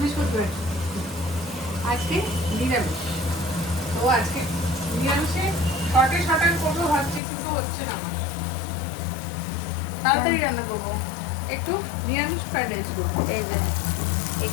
আজকে নিরামিষ। তো আজকে নিরামিষে শর্টে করবো ভাবছি, কিন্তু হচ্ছে না আমার। তাড়াতাড়ি রান্না করবো, একটু নিরামিষ ফ্রাইড রাইস করবো। এই যে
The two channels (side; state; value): right; drops out; at 7.2 s